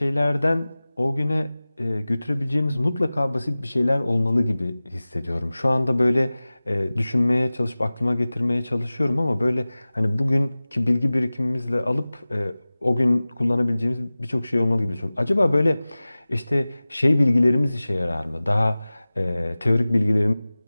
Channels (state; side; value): inverted; both; correlation -0.98